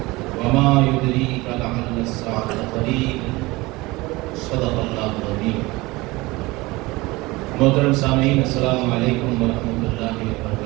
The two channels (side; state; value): left; quieter; 21.8 dB